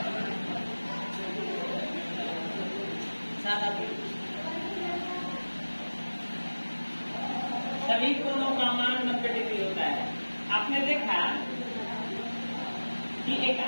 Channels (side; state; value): both; inverted; correlation -1.00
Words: सभी कोणों का मान 90 डिग्री होता है। आपने देखा कि एक